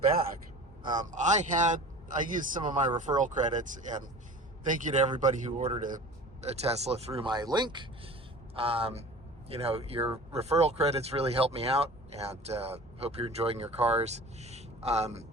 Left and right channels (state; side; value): normal; both; correlation 0.39